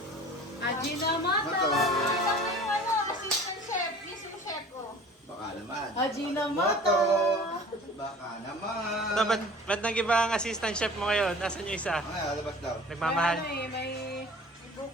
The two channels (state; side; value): normal; both; correlation 0.44